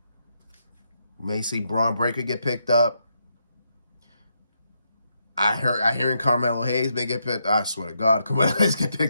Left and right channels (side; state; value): both; inverted; correlation -0.80